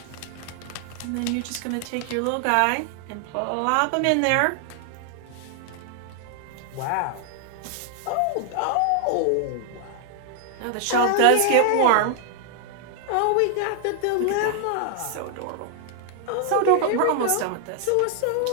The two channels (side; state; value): both; different; correlation 0.00